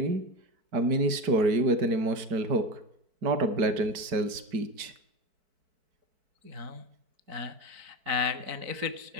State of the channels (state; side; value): late; left; 4.6 ms